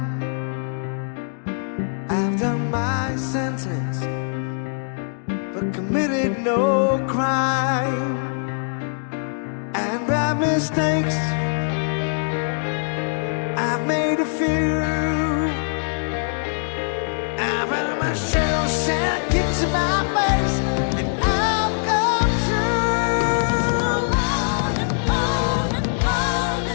I've done my sentence but committed no crime. And by mistakes I've made a few. I've had my share of sad kicks in my face, and I've come through.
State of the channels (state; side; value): silent; right; digital silence